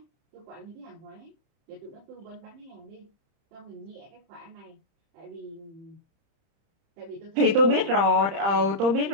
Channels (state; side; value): late; left; 30 ms